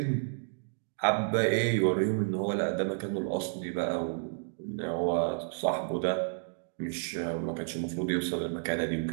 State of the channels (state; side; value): silent; left; digital silence